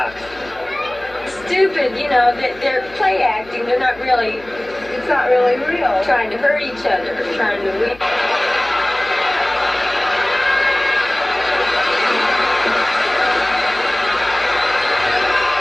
Stupid, you know, they're play acting. They're not really, it's not really real. Trying to hurt each other, trying to win.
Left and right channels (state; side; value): noise; left; hum, 24 dB below the sound